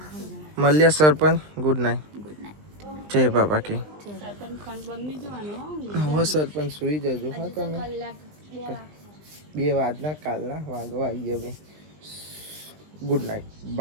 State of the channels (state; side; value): late; left; 20 ms